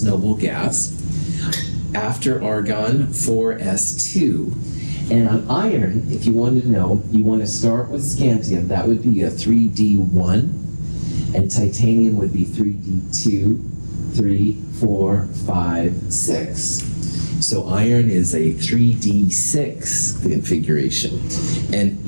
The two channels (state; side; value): inverted; both; correlation -1.00